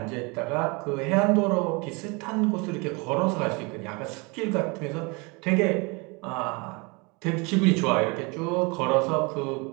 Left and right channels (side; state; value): left; quieter; 28.7 dB